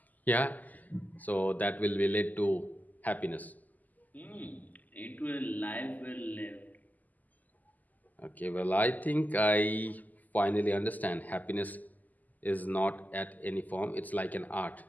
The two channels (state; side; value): late; right; 0.081 ms